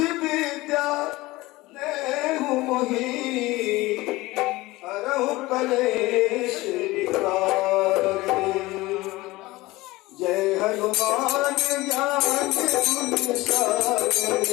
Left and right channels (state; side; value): quieter; right; 19.9 dB